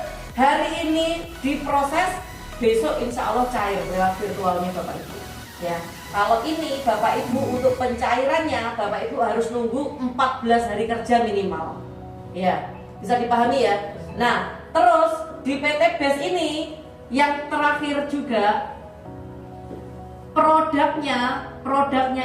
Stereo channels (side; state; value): both; identical; correlation 1.00